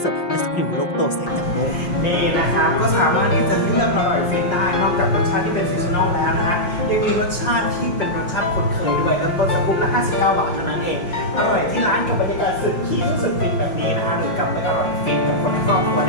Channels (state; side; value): late; right; 5.6 ms